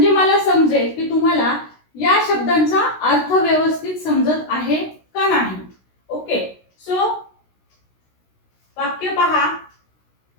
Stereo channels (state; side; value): late; right; 16 ms